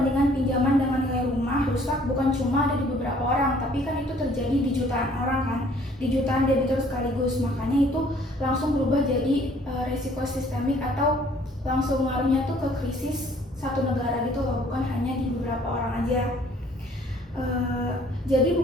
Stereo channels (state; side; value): normal; both; correlation 0.58